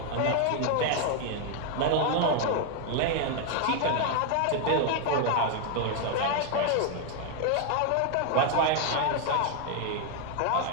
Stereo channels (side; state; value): both; different; correlation 0.01